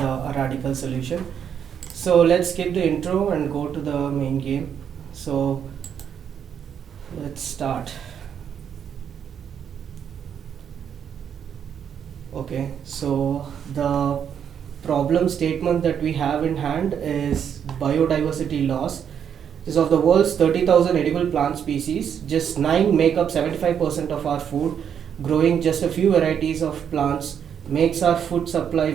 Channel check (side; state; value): left; quieter; 8.2 dB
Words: a radical solution. So let's skip the intro and go to the main game. So let's start. Okay, so the problem statement that we have in hand is biodiversity loss. Is of the world's 30,000 edible plant species, just 9 make up 75% of our food. Growing just a few varieties of plants makes our food supply